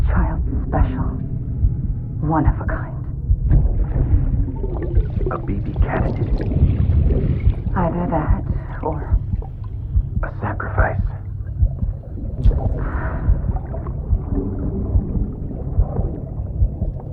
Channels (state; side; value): identical; both; correlation 1.00